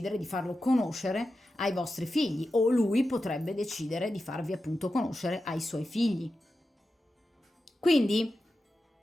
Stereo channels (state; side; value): normal; both; correlation 0.91